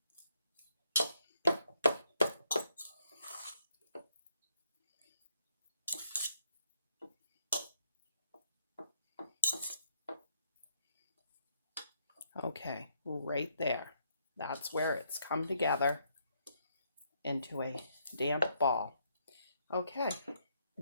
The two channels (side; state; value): both; inverted; correlation -0.75